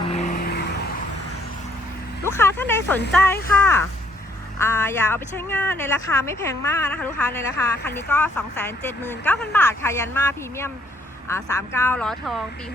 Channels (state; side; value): normal; both; correlation 0.66